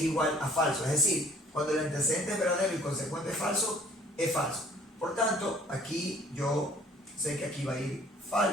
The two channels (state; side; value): normal; both; correlation 0.55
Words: igual a falso, es decir, cuando el antecedente es verdadero y el consecuente es falso. Por tanto, aquí yo sé que aquí va a ir